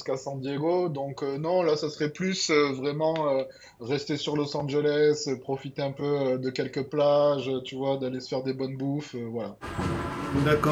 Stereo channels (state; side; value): identical; both; correlation 1.00